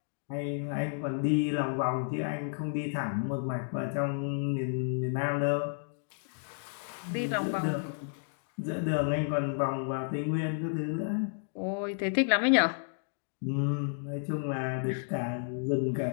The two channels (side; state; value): right; silent; digital silence